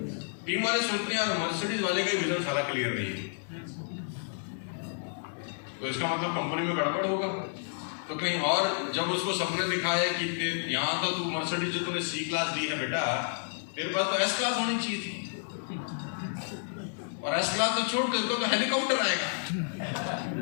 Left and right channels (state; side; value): silent; right; 57 dB below the other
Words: टीम वाले सोचते हैं यार मर्सिडीज वाले का विजन सारा क्लियर नहीं है, तो इसका मतलब कंपनी में गड़बड़ होगा। तो कहीं और जब उसको सपने दिखाए कि यहाँ तो तू मर्सिडीज जो तूने C क्लास दी है बेटा, मेरे पास तो S क्लास होनी चाहिए थी, और S क्लास तो छोड़ दे तो हेलीकॉप्टर आएगा।